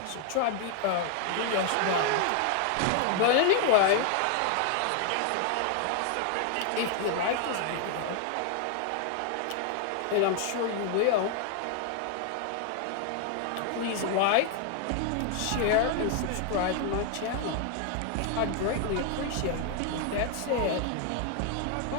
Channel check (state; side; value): different; both; correlation 0.00